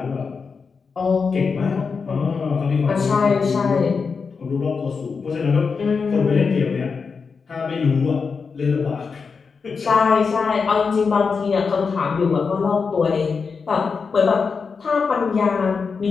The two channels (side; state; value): right; quieter; 5.2 dB